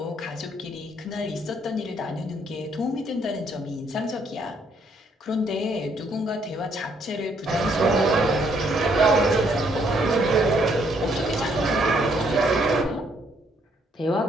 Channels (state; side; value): normal; both; correlation 0.69